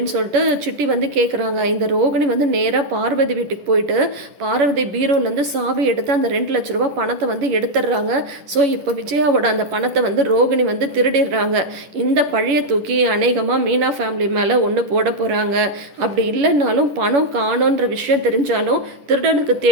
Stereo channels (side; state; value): left; late; 11 ms